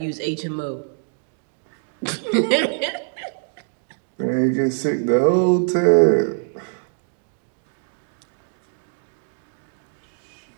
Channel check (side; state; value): left; silent; digital silence